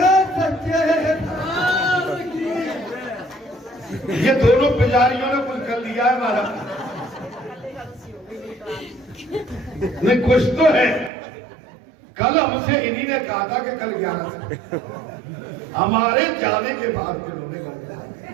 ये दोनों पुजारियों ने कुछ कर लिया है हमारा। नहीं कुछ तो है। कल हमसे इन्हीं ने कहा था कि कल 11 हमारे जाने के बाद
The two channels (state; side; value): drops out; left; at 11.1 s